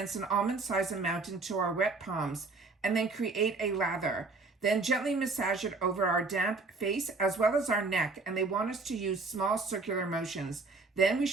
an almond-sized amount into our wet palms and then create a lather. Then gently massage it over our damp face as well as our neck, and they want us to use small circular motions. Then we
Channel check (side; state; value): left; quieter; 3.7 dB